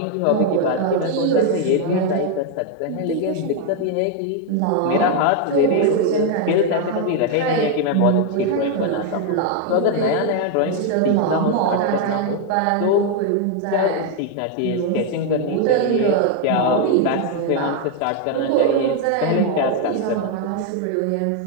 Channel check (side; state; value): both; different; correlation 0.00